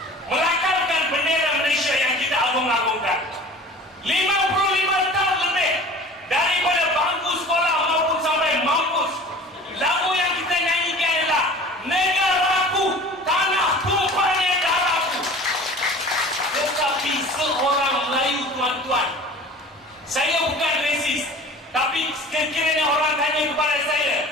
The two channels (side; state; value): both; normal; correlation 0.42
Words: melakarkan bendera Malaysia yang kita agung-agungkan. 55 tahun lebih daripada bangku sekolah maupun sampai mampus, lagu yang kita nyanyikan adalah negaraku, tanah tumpahnya darahku. Tetapi seorang Melayu, tuan-tuan, saya bukan resis, tapi sekiranya orang tanya kepada saya,